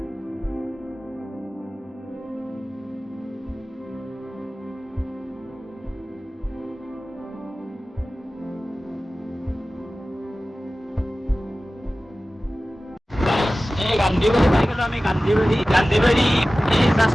গান্ধীবাৰী পাই গ'লো আমি, গান্ধীবাৰী এই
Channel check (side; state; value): both; normal; correlation 0.96